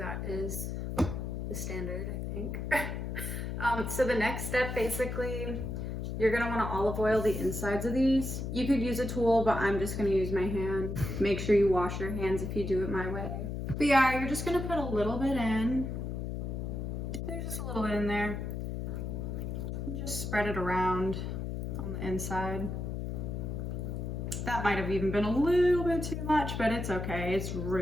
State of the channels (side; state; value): left; noise; hum, 4 dB below the sound